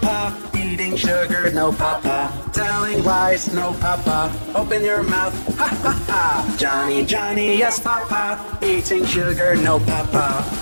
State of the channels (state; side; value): inverted; both; correlation -1.00